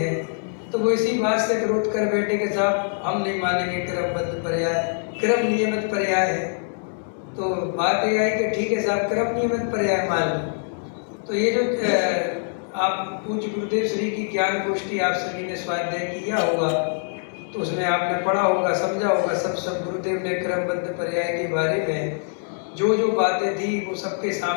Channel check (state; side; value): silent; right; 63 dB below the other